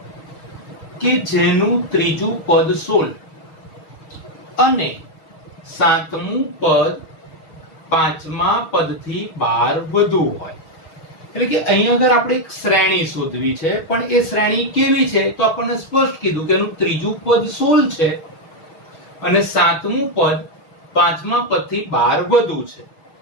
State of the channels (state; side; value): late; right; 6.3 ms